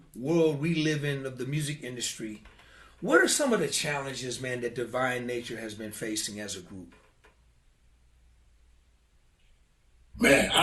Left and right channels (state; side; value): identical; both; correlation 1.00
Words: world we live in of the music industry, what are some of the challenges, man, that Divine Nature has been facing as a group? Man,